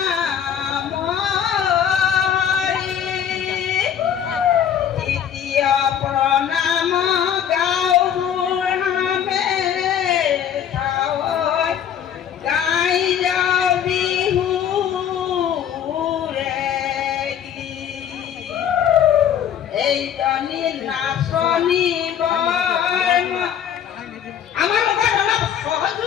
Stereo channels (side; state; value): right; quieter; 9.1 dB